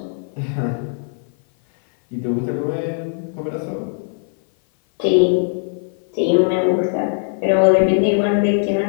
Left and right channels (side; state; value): right; silent; 57 dB below the other